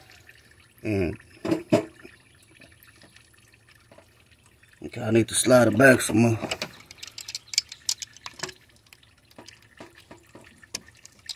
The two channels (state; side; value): identical; both; correlation 1.00